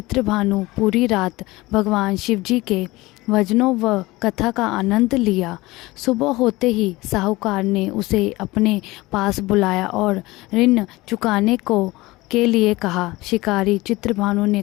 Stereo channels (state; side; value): quieter; right; 20.4 dB